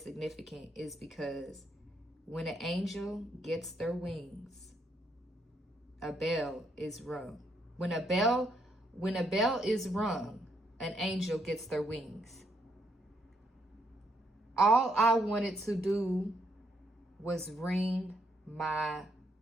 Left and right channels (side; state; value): both; normal; correlation 0.75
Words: significant is because when an angel gets their wings, a bell is rung. When a bell is rung, an angel gets their wings. All I wanted to do was ring my